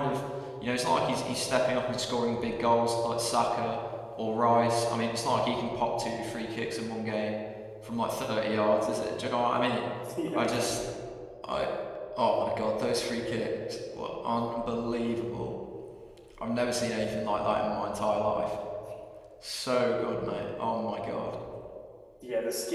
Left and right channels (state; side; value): identical; both; correlation 1.00